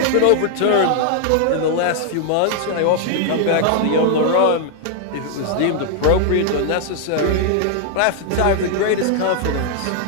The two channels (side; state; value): both; different; correlation -0.01